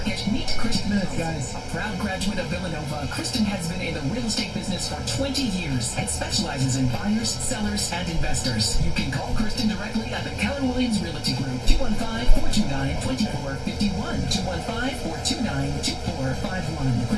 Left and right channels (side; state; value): both; identical; correlation 1.00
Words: meet Kristen. Guys. A proud graduate of Villanova, Kristen has been in the real estate business for 20 years and specializes in buyers, sellers, and investors. You can call Kristen directly at the Keller Williams Realty Group, 215-429-2451, 215-429-2451.